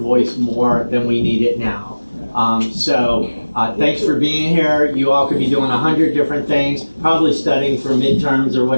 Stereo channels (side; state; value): both; inverted; correlation -1.00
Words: more than we need it now. So thanks for being here. You all could be doing 100 different things, probably studying for midterms or